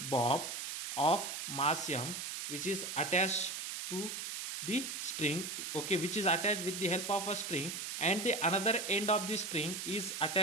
of mass m which is attached to the string. Okay, which is attached with the help of a string and the another end of the string is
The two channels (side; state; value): right; noise; hiss, 5 dB below the sound